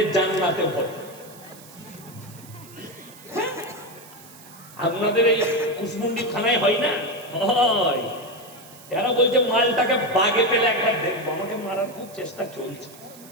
জান্নাতে ভরে। আপনাদের এই কুসমুন্ডি থানায় হয় না? হয়। এরা বলছে মালটাকে বাগে পেলে একবার দেখবো। আমাকে মারার খুব চেষ্টা চলছে।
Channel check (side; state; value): right; noise; hiss, 20 dB below the sound